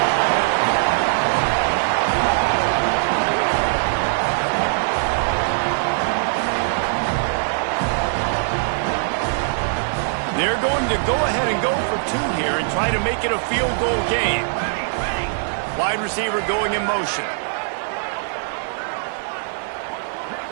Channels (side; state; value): left; silent; digital silence